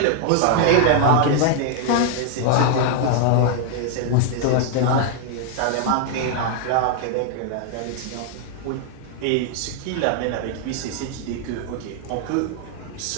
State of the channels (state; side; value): different; both; correlation 0.00